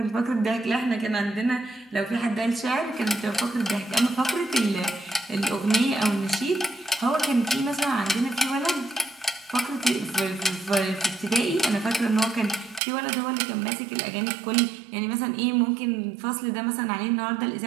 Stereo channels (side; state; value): left; drops out; at 12.8 s